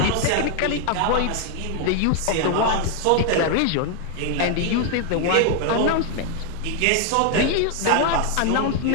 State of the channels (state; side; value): different; both; correlation 0.00